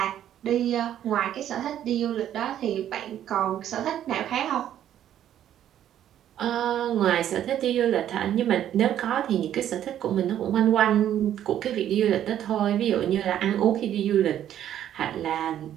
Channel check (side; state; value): left; quieter; 11.0 dB